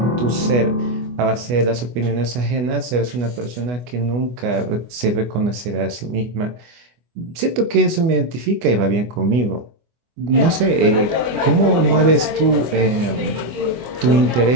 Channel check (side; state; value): left; late; 24 ms